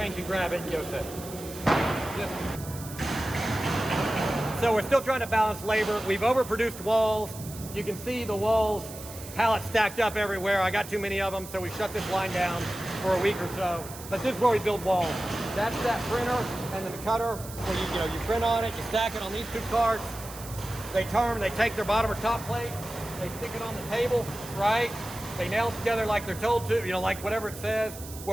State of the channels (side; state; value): right; noise; hiss, 14 dB below the sound